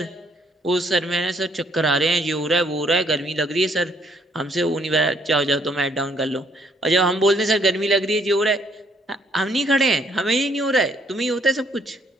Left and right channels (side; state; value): both; normal; correlation 0.67